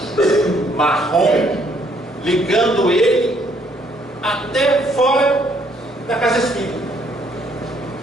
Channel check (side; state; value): both; normal; correlation 0.67